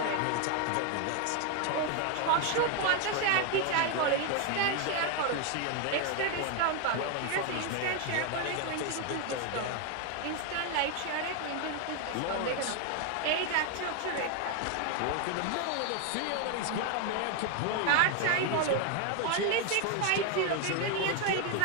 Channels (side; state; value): both; different; correlation 0.01